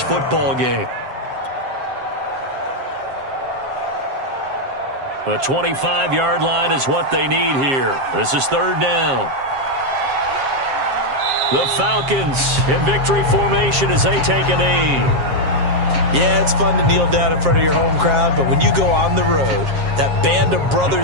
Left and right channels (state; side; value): late; left; 7.5 ms